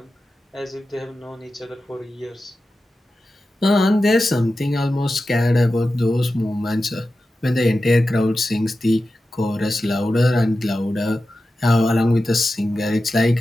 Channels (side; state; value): both; normal; correlation 0.93